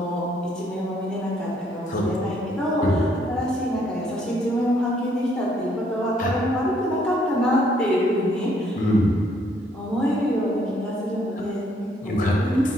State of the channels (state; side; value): normal; both; correlation 0.68